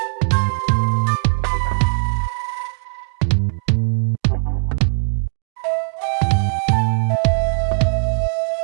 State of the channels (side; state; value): left; silent; digital silence